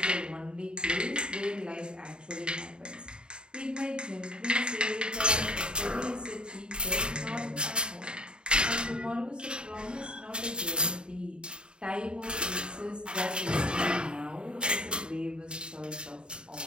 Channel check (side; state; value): left; late; 0.050 ms